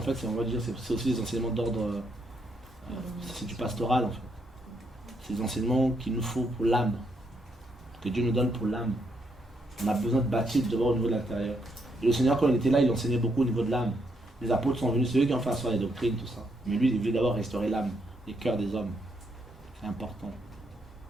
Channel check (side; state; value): both; normal; correlation 0.76